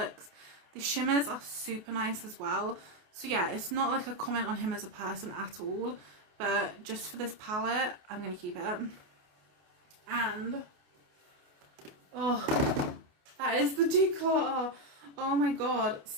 The shimmers are super nice as well. So yeah, it's not like a comment on him as a person at all, but just for this palette, I'm going to keep it. And, oh, that is the declutter. Oh my god.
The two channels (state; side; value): late; left; 28 ms